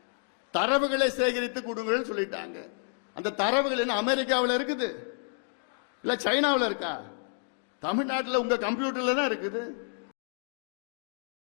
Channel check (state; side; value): silent; right; 58 dB below the other